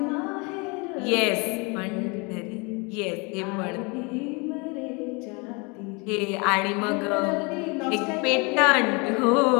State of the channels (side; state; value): right; quieter; 29.7 dB